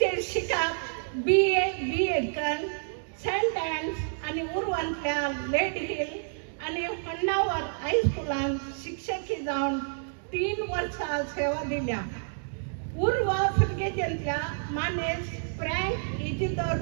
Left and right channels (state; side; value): silent; left; digital silence